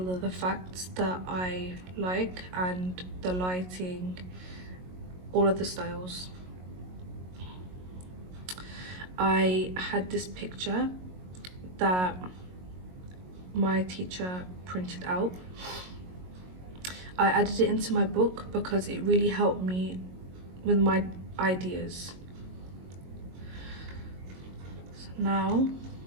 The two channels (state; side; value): late; left; 22 ms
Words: of the facts that I like, and the lighting, all of the styles. I had this picture that my teacher printed out. I added it into my book because it really helped me with my ideas. So now